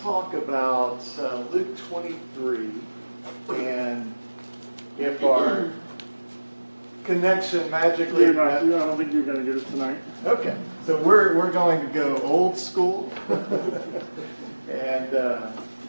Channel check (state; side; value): inverted; both; correlation -1.00